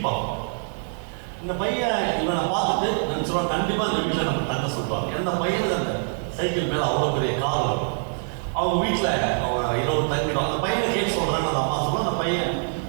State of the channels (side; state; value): left; silent; 62 dB below the other